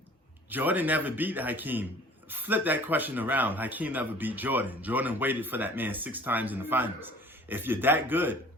Jordan never beat Hakeem, flip that question around. Hakeem never beat Jordan. Jordan waited for that man 6 times in the finals. If you're that good,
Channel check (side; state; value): both; normal; correlation 0.48